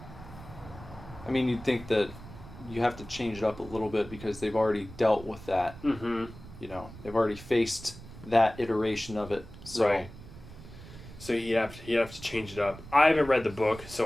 I mean, you'd think that you have to change it up a little bit because they've already dealt with that. Mm-hmm. You know, they've already faced that iteration of it. So. Right. So you have to change it up. I haven't read the book,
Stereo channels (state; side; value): noise; right; rumble, 16 dB below the sound